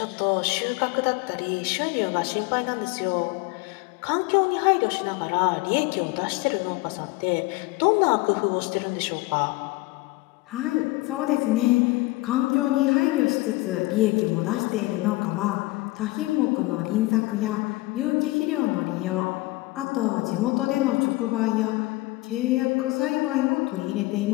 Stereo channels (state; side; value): quieter; right; 21.1 dB